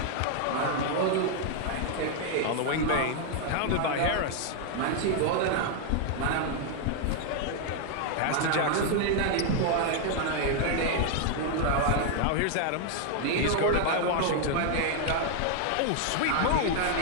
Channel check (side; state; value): both; different; correlation 0.01